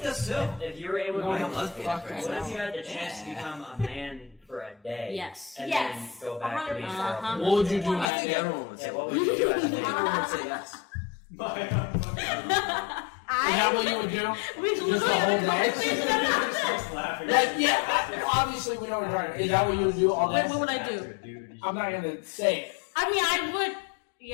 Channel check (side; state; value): right; drops out; at 8.1 s